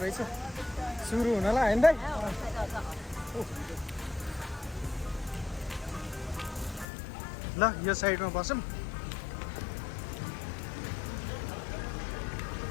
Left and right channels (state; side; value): drops out; right; at 6.9 s